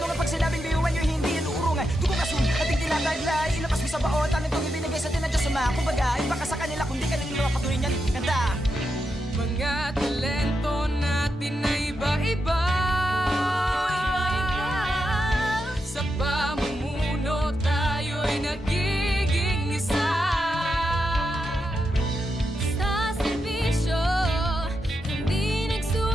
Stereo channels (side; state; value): both; normal; correlation 0.86